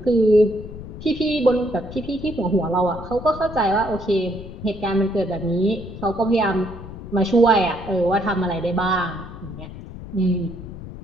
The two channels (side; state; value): left; noise; rumble, 12 dB below the sound